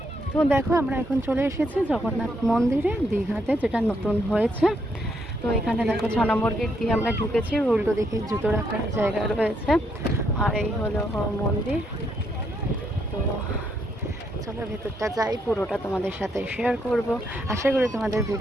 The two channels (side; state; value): both; normal; correlation 0.75